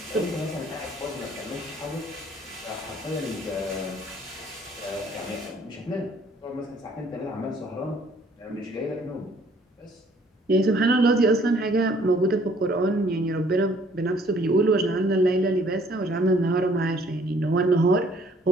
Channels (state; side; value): normal; both; correlation 0.60